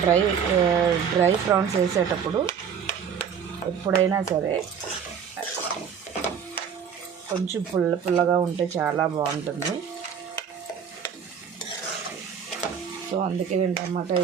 డ్రై ప్రాన్స్ వేసేటప్పుడు ఎప్పుడైనా సరే కొంచెం పుల్లగా ఉంటే చాలా బాగుంటుంది. సో అందుకే నేను టమాటా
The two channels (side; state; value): left; quieter; 7.4 dB